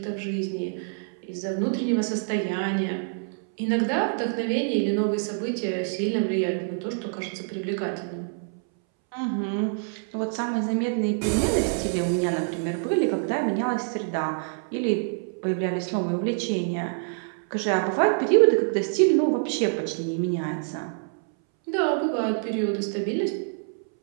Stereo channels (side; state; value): left; silent; 61 dB below the other